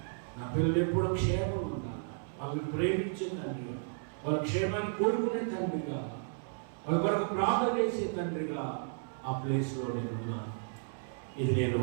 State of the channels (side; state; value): left; silent; 55 dB below the other